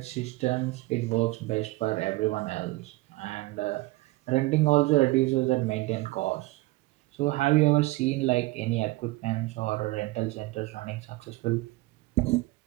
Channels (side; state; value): left; quieter; 20.8 dB